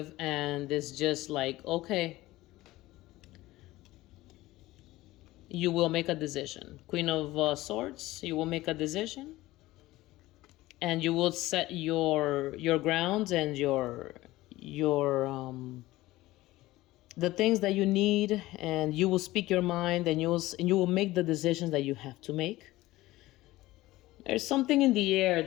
and it's just like, okay, you will make a decision. Queen of Swords, you will make a decision, and you will set your grounds and your the things that you need, and you will speak your mind, and you will make the decisions that you have to make. There's something in the air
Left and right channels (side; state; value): right; quieter; 17.7 dB